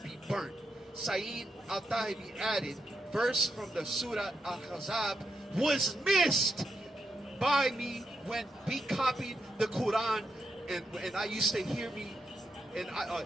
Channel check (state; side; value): normal; both; correlation 0.84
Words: burnt. Sayyid al-Tahibi added, "Verse from the Surah Al-Ahzab was missed by me when we copied the Quran, and I used to hear me, and